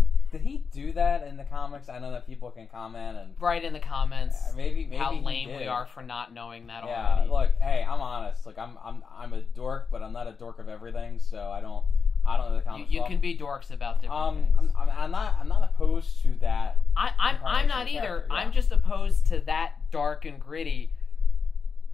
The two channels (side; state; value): right; quieter; 5.5 dB